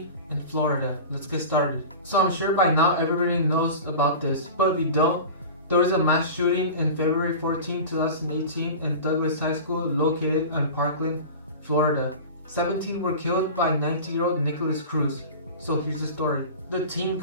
in Florida. Let's get started. So I'm sure by now everybody knows about this, but if you don't, there was a mass shooting in February 14, 2018 in Douglas High School located in Parkland, Florida. 17 were killed by 19-year-old Nikolas Cruz. So here's the story. The teen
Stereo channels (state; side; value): inverted; both; correlation -0.33